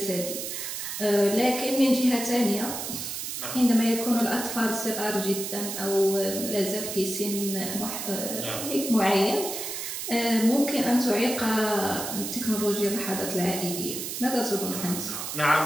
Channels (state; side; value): noise; right; hiss, 5 dB below the sound